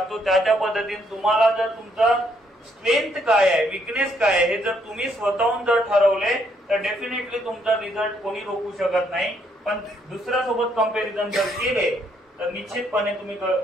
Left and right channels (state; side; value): normal; both; correlation 0.71